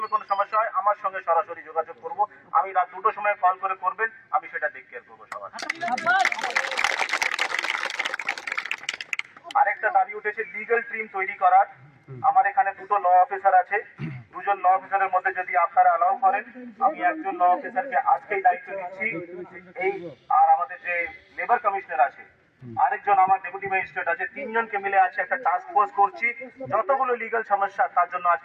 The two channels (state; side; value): identical; both; correlation 1.00